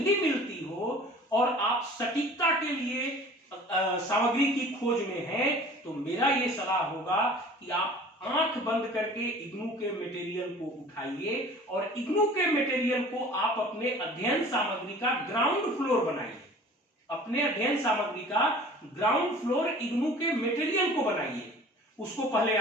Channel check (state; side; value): normal; both; correlation 0.45